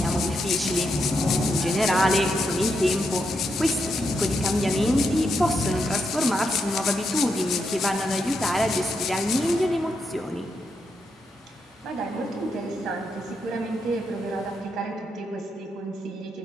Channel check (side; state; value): both; normal; correlation 0.82